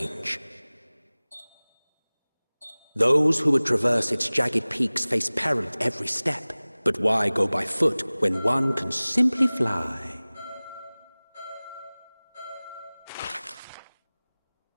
Those who would traverse its jagged peaks face peril at every step. But why go by foot when one can simply fly?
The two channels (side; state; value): both; inverted; correlation -0.99